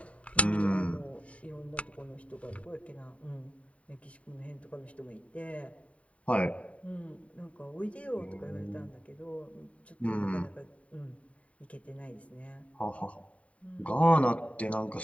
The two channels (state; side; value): late; right; 0.065 ms